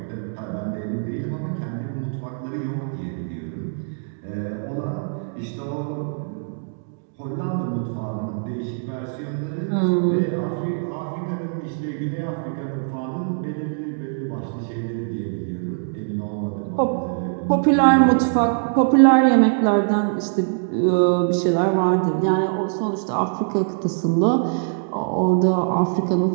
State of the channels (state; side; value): silent; left; digital silence